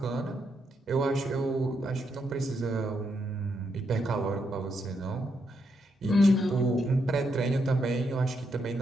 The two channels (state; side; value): normal; both; correlation 0.80